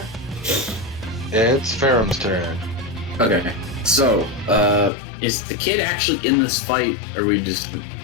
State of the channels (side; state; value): right; drops out; at 4.9 s